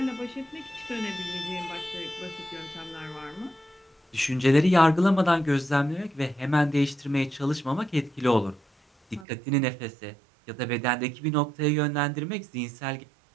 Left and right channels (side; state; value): left; drops out; at 9.2 s